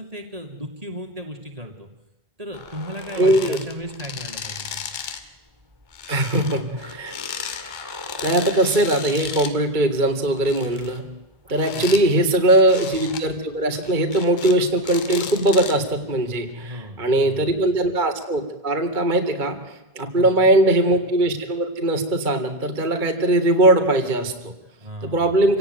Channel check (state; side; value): late; left; 2.3 ms